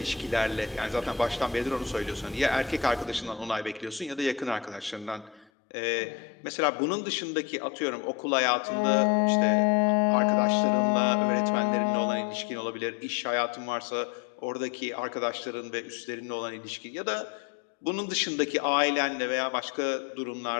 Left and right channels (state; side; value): drops out; right; at 5.5 s